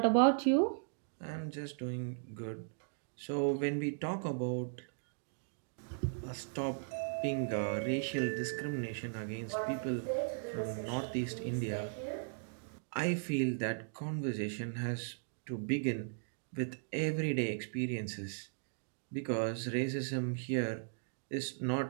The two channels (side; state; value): left; silent; digital silence